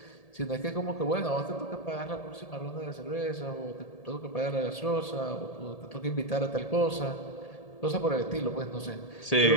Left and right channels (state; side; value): late; right; 1.8 ms